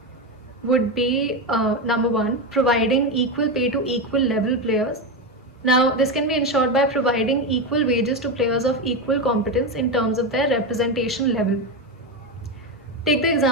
would be number one, providing equal pay to equal level players. Now, this can be ensured by providing equal wages to players of equal competence in terms of their representation level. Take the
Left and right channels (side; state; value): both; normal; correlation 0.13